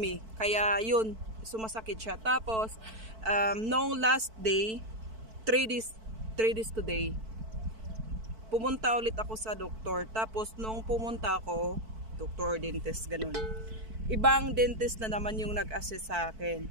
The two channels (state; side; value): late; left; 4.5 ms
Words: Kaya yun, sumasakit siya. Tapos nung last day, 3 days today, pumunta ulit ako sa doktor. Tapos nung pumunta ako, doktor, dentist, ganun, ibang dentist na naman yung nag-assist sa akin.